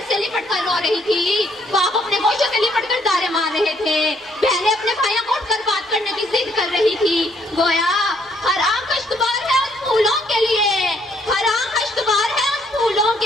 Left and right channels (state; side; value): normal; both; correlation 0.68